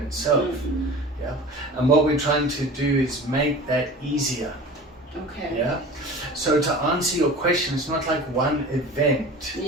itself. Mm-hmm. Yeah, and what we're trying to do is make that easier. Okay. Yeah. So to answer your question, it's not like one event.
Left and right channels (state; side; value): normal; both; correlation 0.38